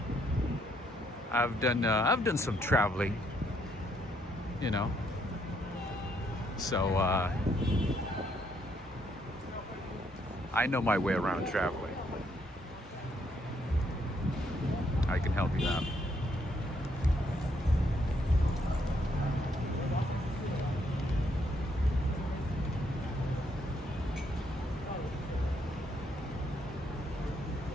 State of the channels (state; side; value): normal; both; correlation 0.72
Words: I've done some traveling, you know, so I know my way around traveling. I can help you out.